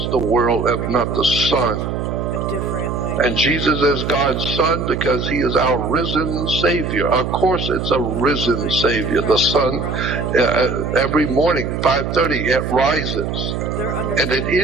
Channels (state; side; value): noise; right; hum, 3 dB below the sound